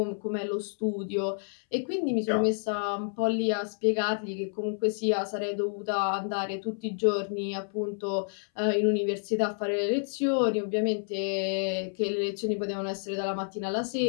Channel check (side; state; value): right; silent; 58 dB below the other